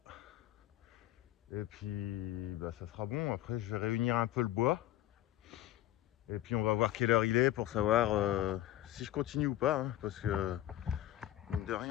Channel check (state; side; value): quieter; right; 13.8 dB